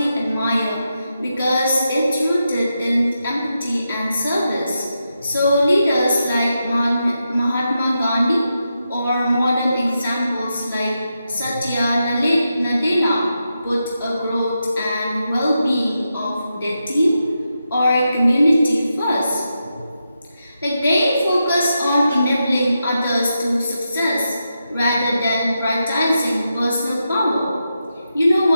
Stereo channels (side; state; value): both; inverted; correlation -0.87